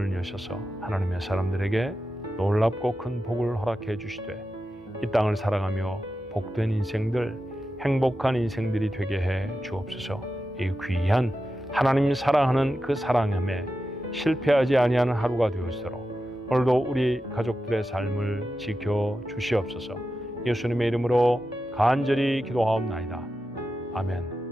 여셔서 하나님의 사람들에게 놀랍고 큰 복을 허락해 주시되 이 땅을 살아가며 복된 인생들, 행복한 인생들이 되게 해 주옵소서. 이 귀한 하나님 사랑하는 그 사랑함에 실패하지 아니하는 하루가 되었도록 오늘도 우리 가족들의 삶을 지켜 주시옵소서. 예수님의 이름으로 간절히 기도하옵나이다. 아멘.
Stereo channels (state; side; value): normal; both; correlation 0.91